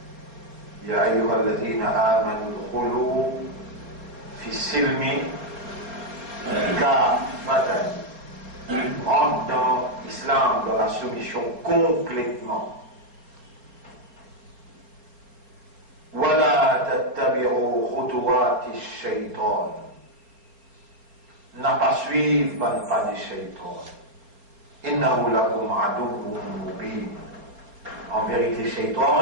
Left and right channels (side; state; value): left; late; 4.2 ms